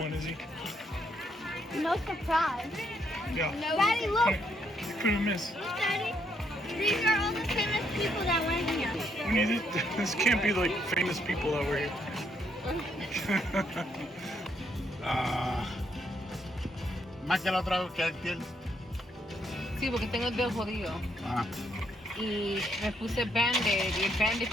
Izzy. No surprise. Yeah. No. Daddy, look. You couldn't miss. Look, Daddy. These are all the famous people that went here. We need it. This can't be like famous people that were here. Más que la otra vez que aquel. Sí, porque tengo el dedo jodido. Ah. Y me puse Band-Aid. Y el Band-Aid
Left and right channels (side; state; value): both; normal; correlation 0.74